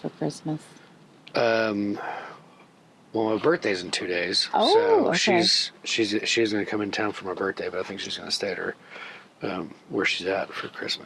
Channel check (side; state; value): both; identical; correlation 1.00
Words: Christmas? Well, my birthday's in 2 days, Oh, so okay. she's going to come in town for my birthday, but I think she's going to stay at her where she's at for